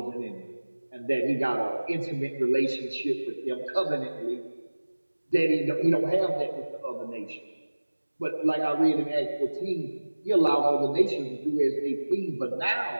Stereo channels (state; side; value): inverted; both; correlation -1.00